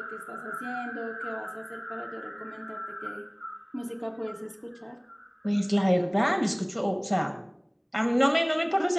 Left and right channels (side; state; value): both; identical; correlation 1.00